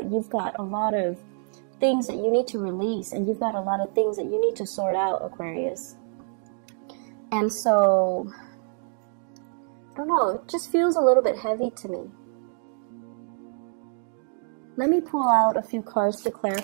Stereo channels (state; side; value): silent; left; 61 dB below the other